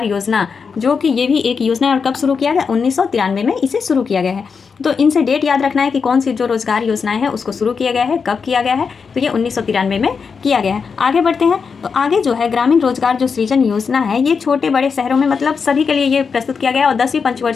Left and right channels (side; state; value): right; quieter; 5.6 dB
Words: योजना, जो कि ये भी एक योजना है और कब शुरू किया गया? 1993 में इसे शुरू किया गया है। तो इनसे डेट याद रखना है कि कौन सी जो रोजगार योजनाएं हैं उसको शुरू किया गया है, कब किया गया है। तो ये 1993 में किया गया है। आगे बढ़ते हैं। तो आगे जो है ग्रामीण रोजगार जो सृजन योजना है, ये छोटे बड़े शहरों में मतलब सभी के लिए ये प्रस्तुत किया गया और 10वीं